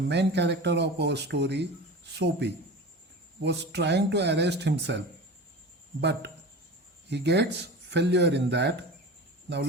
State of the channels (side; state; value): both; normal; correlation 0.32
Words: character of our story, Soapy, was trying to arrest himself, but he gets failure in that. Now